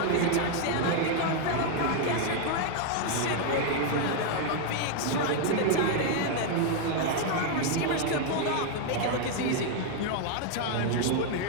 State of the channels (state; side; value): different; both; correlation 0.00